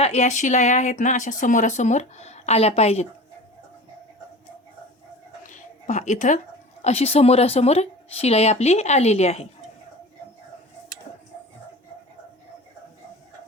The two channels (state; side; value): normal; both; correlation 0.36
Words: या शिलाया आहेत ना, अशा समोरासमोर आल्या पाहिजेत. पहा, इथं अशी समोरासमोर शिलाई आपली आलेली आहे.